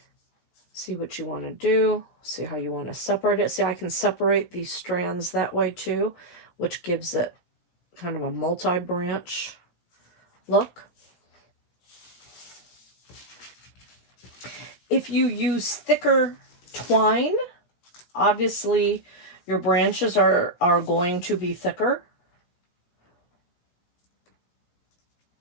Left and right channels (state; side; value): late; right; 17 ms